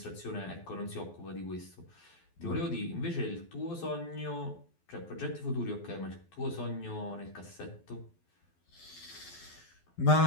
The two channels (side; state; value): right; late; 12 ms